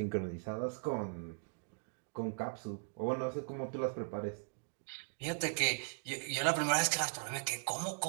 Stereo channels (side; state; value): left; silent; digital silence